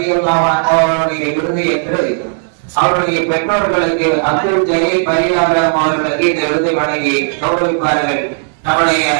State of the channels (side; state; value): left; silent; digital silence